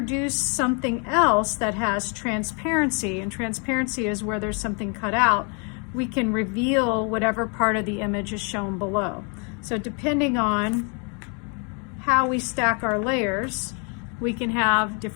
something else that has transparency, and transparency is where there's something cut out, we can reveal whatever part of the image is shown below. So depending on how we stack our layers, we can have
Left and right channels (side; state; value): right; quieter; 36.3 dB